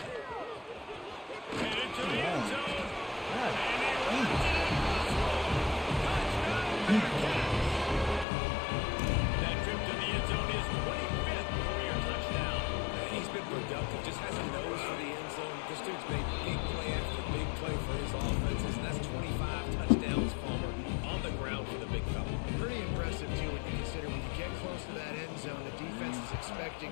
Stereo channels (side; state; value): right; drops out; at 8.2 s